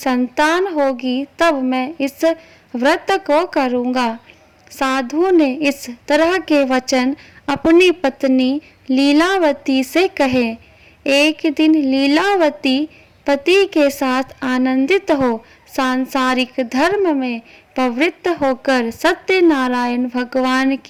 होगी तब मैं इस व्रत को करूँगा। साधु ने इस तरह के वचन अपनी पत्नी लीलावती से कहे। एक दिन लीलावती पति के साथ आनंदित हो सांसारिक धर्म में प्रवृत्त होकर सत्यनारायण भगवान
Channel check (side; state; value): both; identical; correlation 1.00